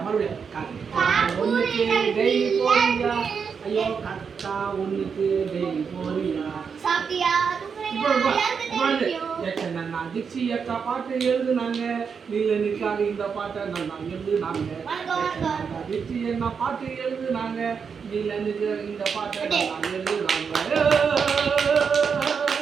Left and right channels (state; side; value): quieter; left; 6.2 dB